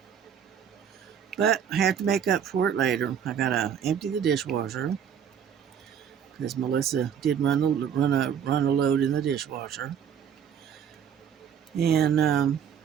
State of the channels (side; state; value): left; quieter; 8.2 dB